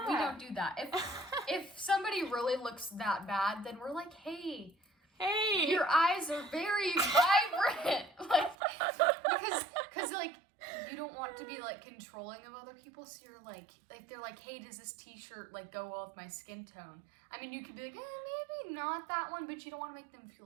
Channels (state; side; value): drops out; left; at 8.6 s